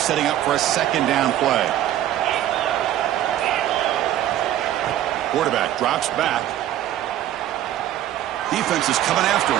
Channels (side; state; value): left; quieter; 12.4 dB